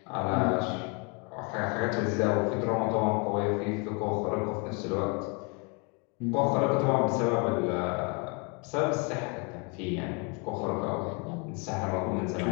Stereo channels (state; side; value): quieter; right; 33.4 dB